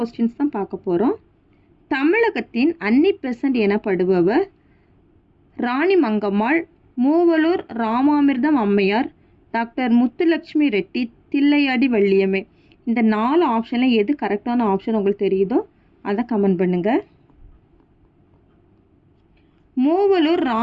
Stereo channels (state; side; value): identical; both; correlation 1.00